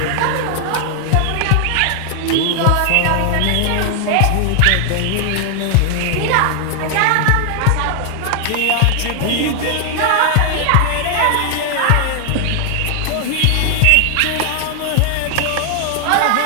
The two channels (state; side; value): different; both; correlation 0.00